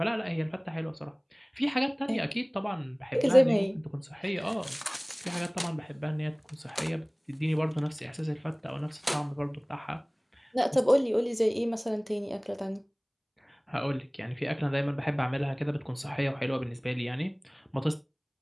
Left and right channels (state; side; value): identical; both; correlation 1.00